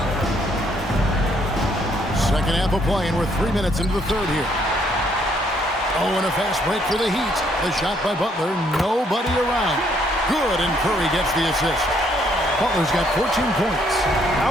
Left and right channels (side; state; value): both; normal; correlation 0.68